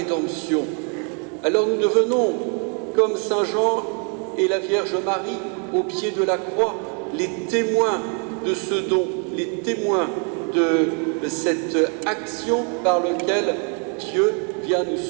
Alors nous devenons, comme Saint Jean et la Vierge Marie, au pied de la croix, les témoins de ce don, les témoins de cette action par laquelle Dieu vient nous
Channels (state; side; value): quieter; left; 40.0 dB